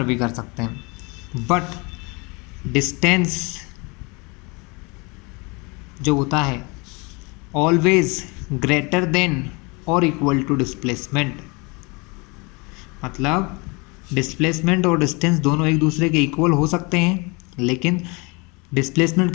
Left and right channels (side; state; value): right; quieter; 28.4 dB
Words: भी कर सकते हैं, बट डिस्टेंस जो होता है ऑलवेज ग्रेटर देन और इक्वल टू डिस्प्लेसमेंट। मतलब डिस्प्लेसमेंट और डिस्टेंस दोनों एक दूसरे के इक्वल हो सकते हैं, लेकिन डिस्प्लेसमेंट